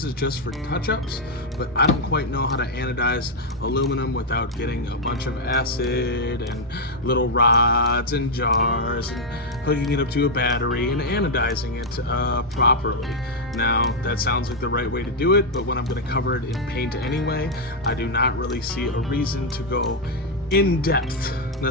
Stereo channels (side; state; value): both; normal; correlation -0.01